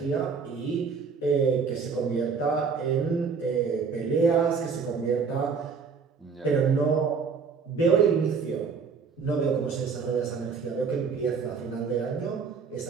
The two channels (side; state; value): left; quieter; 5.6 dB